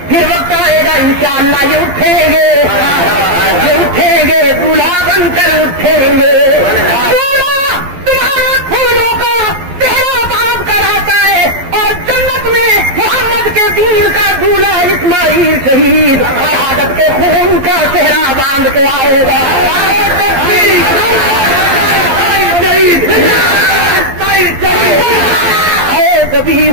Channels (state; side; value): late; left; 12 ms